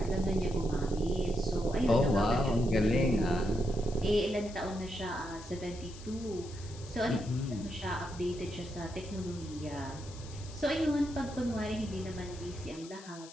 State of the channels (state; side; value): noise; left; hiss, 18 dB below the sound